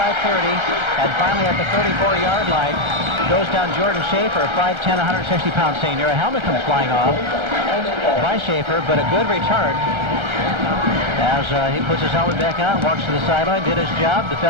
and finally at the 34-yard line goes down Jordan Schaefer, a 5'10", 160-pound senior. A helmet comes flying off by Schaefer, but a good return as he puts his helmet back on, walks to the sideline, did his job. The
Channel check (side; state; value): left; late; 1.3 ms